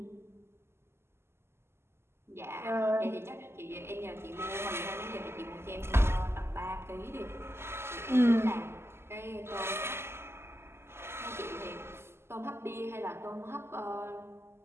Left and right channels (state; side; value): late; left; 0.12 ms